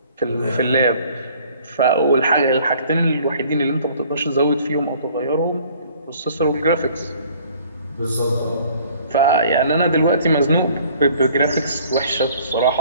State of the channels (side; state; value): both; inverted; correlation -0.55